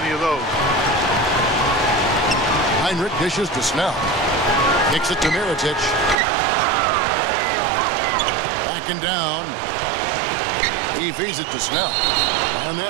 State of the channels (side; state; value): left; drops out; at 6.2 s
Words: of those. Heinrich dishes to Snell. Kicks it to Mirotic. Backing down. He feeds it to Snell. And